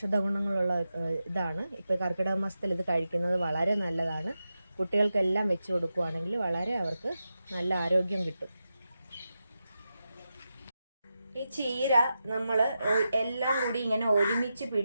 ഗുണങ്ങളുള്ള ഇതാണ്. ഇപ്പോൾ കർക്കിടക മാസത്തിൽ ഇത് കഴിക്കുന്നത് വളരെ നല്ലതാണ്. കുട്ടികൾക്കെല്ലാം വെച്ച് കൊടുക്കുകയാണെങ്കിൽ വളരെ അവർക്ക് നല്ല ആരോഗ്യം കിട്ടും. ഈ ചീര നമ്മൾ എല്ലാം കൂടി ഇങ്ങനെ ഒരുമിച്ച്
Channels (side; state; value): both; inverted; correlation -0.89